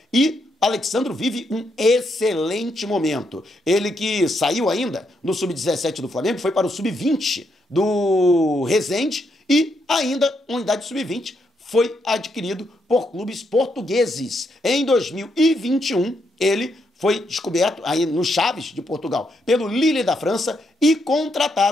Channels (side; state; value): both; normal; correlation 0.78